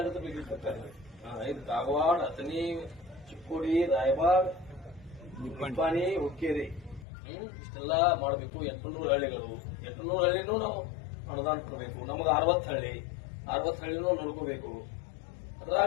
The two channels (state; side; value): drops out; right; at 7.1 s